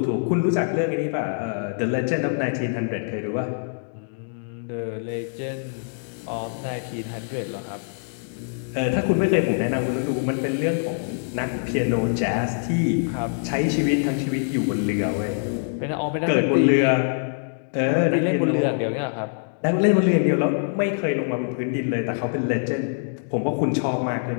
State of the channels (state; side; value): silent; right; digital silence